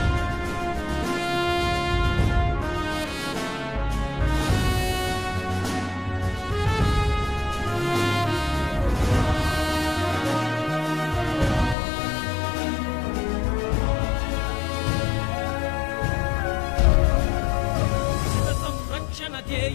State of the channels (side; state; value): right; drops out; at 11.8 s